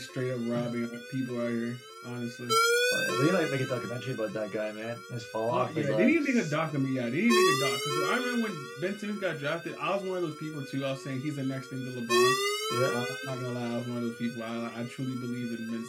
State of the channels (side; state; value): both; identical; correlation 1.00